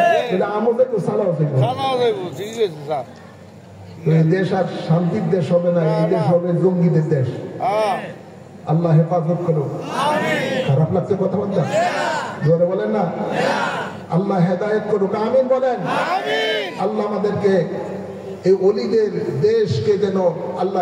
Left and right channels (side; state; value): both; identical; correlation 1.00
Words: আমাদের তো সালাও দেশ আর শান্তির দেশ হবে না, এই দেশ হবে জঙ্গিদের দেশ। আল্লাহ হেফাজত করুন। খারাপ লাগছে কথা বলতে? জোরে বলেন না, আল্লাহ হেদায়েত করুক, আমিন বলেন। আল্লাহ আমাদেরকে এই ওলিদের দেশকে যেন আল্লাহ